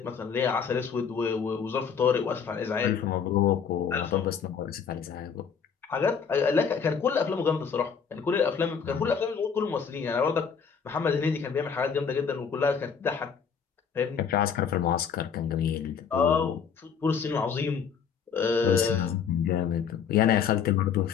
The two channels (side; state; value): right; quieter; 6.7 dB